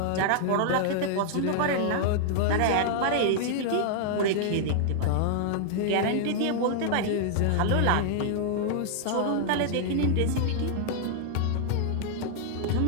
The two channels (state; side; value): different; both; correlation -0.01